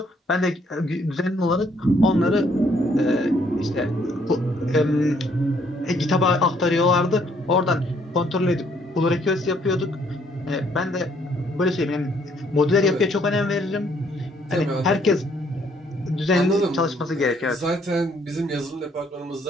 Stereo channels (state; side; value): normal; both; correlation 0.66